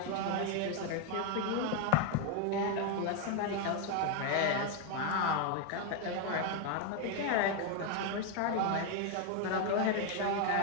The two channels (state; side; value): different; both; correlation 0.01